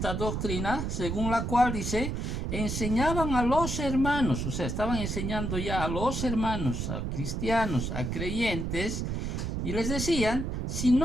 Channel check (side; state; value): right; noise; rumble, 2 dB below the sound